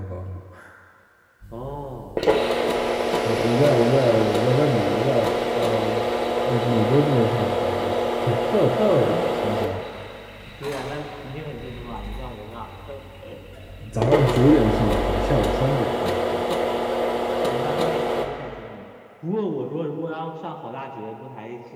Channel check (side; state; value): both; identical; correlation 1.00